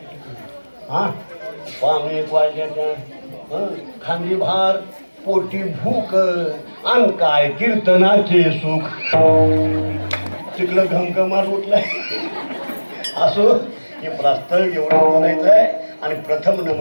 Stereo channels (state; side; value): inverted; both; correlation -1.00